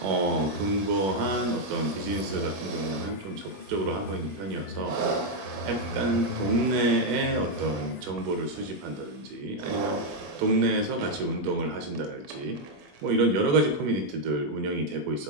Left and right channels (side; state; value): left; late; 21 ms